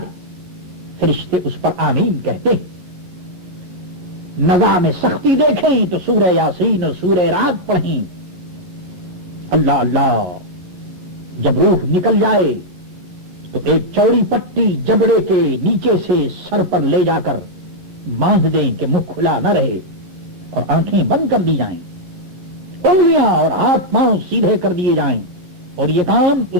فرشتے اس پر آمین کہتے ہیں. نظام سختی دیکھیں تو سورہ یاسین اور سورہ رات پڑھیں. اللہ اللہ, جب روح نکل جائے تو ایک چوڑی پٹی جبڑے کے نیچے سے سر پر لے جا کر باندھ دیں کہ منہ کھلا نہ رہے اور آنکھیں بند کر دی جائیں, انگلیاں اور ہاتھ پاؤں سیدھے کر دیے جائیں. اور یہ کام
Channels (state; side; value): late; left; 10 ms